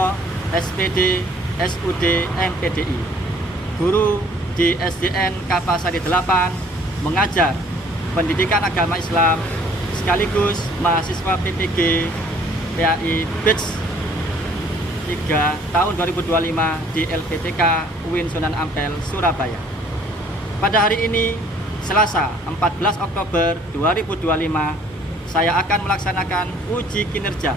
SPD SUD MPDI, guru di SDN Kapasari 8, mengajar pendidikan agama Islam sekaligus mahasiswa PPG PAI Batch 3 tahun 2025 di LPTK UIN Sunan Ampel, Surabaya. Pada hari ini, Selasa 14 Oktober 2025, saya akan melaksanakan uji kinerja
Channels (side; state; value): both; normal; correlation 0.57